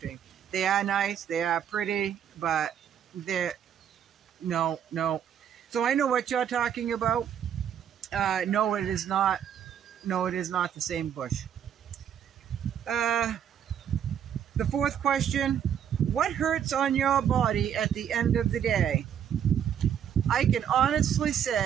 They are nice, they are pretty, but they're no. So I know what you're talking about. No, it is not. No, it is not the same bush. The fourth question: what hurts on your body at the end of the day? I can honestly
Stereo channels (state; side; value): quieter; left; 9.0 dB